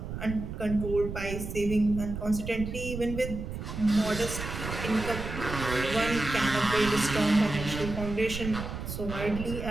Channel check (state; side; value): noise; right; rumble, 7 dB below the sound